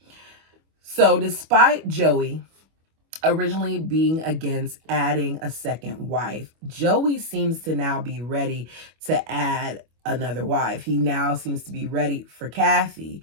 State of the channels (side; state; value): left; late; 25 ms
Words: So despite Joey originally being against adding a second wife, Joey seems to now be ready to add another wife. He now seems to be ready for Kathy.